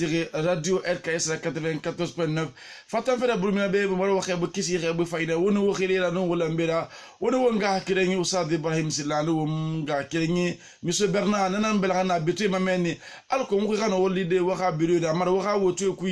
radio RKS 94.9 fatan fera bulmina be mo waxe bu kisi xebu fayda wono waxile la no wala mbira wono wonga kirengi Oustaz Ibrahim Silano wonga kirengi monsieur Bernard nanan belana bitu mameni alko mo xana woli de waxa biru da mar waxa wotu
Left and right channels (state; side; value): identical; both; correlation 1.00